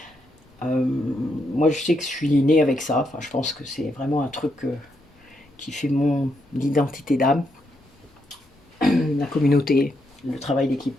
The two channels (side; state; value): both; normal; correlation 0.79